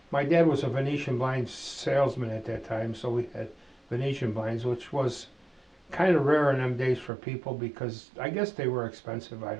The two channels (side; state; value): left; drops out; at 7.1 s